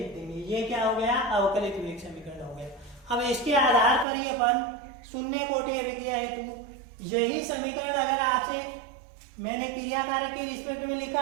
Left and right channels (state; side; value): drops out; left; at 4.0 s